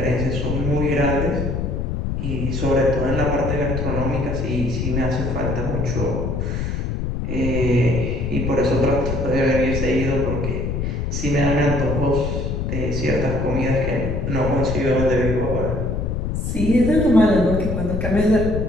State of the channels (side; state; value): left; noise; rumble, 2 dB below the sound